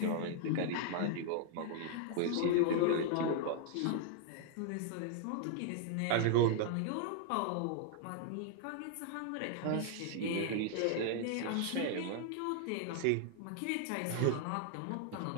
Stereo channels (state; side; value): different; both; correlation 0.00